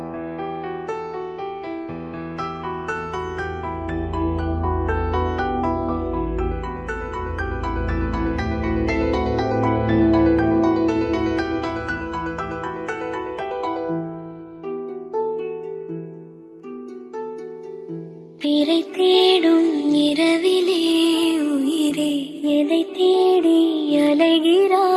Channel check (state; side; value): identical; both; correlation 1.00